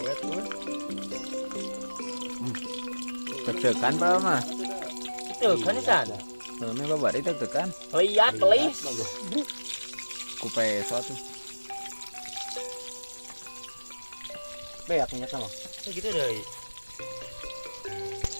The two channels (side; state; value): both; inverted; correlation -1.00